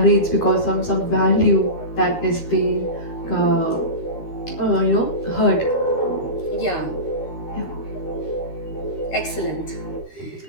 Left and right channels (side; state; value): right; late; 13 ms